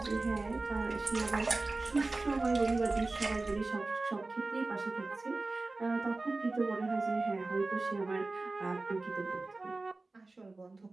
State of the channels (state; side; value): quieter; left; 3.3 dB